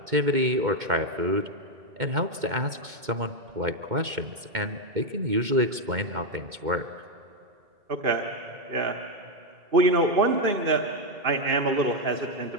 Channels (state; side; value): late; left; 2.2 ms